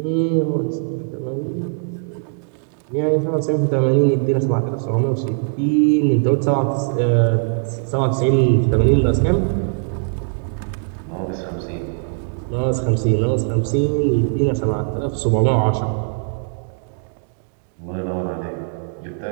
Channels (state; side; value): silent; left; digital silence